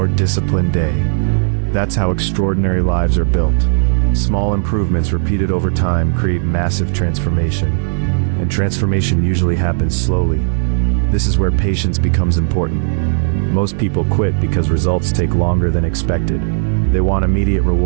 disciplined day. That's how extraordinary lives are built. Small improvements repeated over time create massive transformation, and transformation usually happens slowly. This is where patience becomes important. Most people quit because results take longer than expected. They want immediate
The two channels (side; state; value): left; silent; digital silence